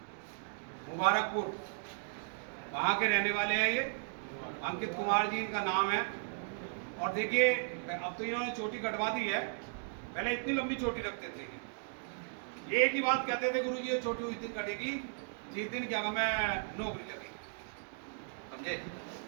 मुबारकपुर, वहाँ के रहने वाले हैं ये। अंकित कुमार जी इनका नाम है। और देखिए अब तो इन्होंने चोटी कटवा दी है, पहले इतनी लंबी चोटी रखते थे। ये एक ही बात कहते थे, गुरु जी ये चोटी उस दिन कटेगी जिस दिन क्या मैं नौकरी लगी, समझे।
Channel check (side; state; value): left; silent; digital silence